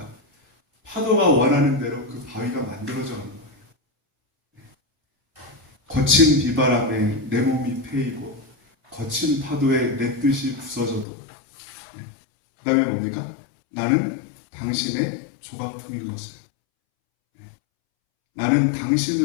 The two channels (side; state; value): right; drops out; at 11.1 s